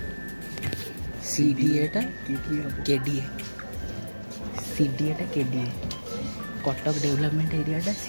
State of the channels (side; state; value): both; inverted; correlation -1.00